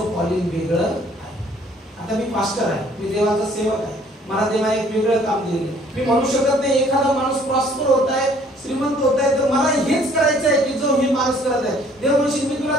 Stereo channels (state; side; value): normal; both; correlation 0.58